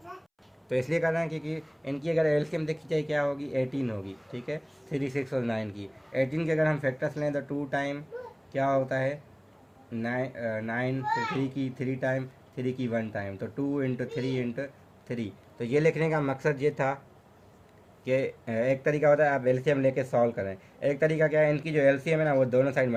तो इसलिए कर रहे हैं क्योंकि इनकी अगर एलसीएम देखी जाए क्या होगी, 18 होगी। ठीक है, 3, 6 और 9 की 18 के अगर हम फैक्टर्स लें तो 2 टाइम क्या होता है 9, फिर 3 की 3 टाइम, 3 की 1 टाइम, तो 2 इंटू 3 इंटू 3। तो ये लिखने का मकसद ये था कि एक तरीका होता है आप एलसीएम लेके सॉल्व करें, एक तरीका क्या है, इनकी जो एलसीएम है ना वो दोनों साइड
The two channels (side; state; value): both; identical; correlation 1.00